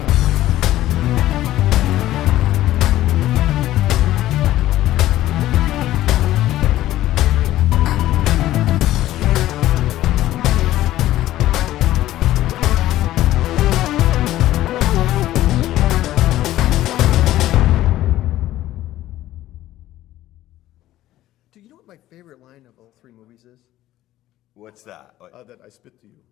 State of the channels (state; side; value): quieter; right; 14.5 dB